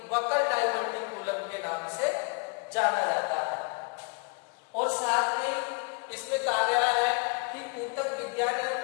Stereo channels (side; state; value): right; quieter; 33.6 dB